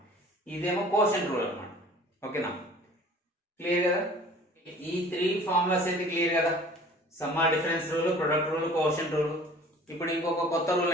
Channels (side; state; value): both; normal; correlation 0.48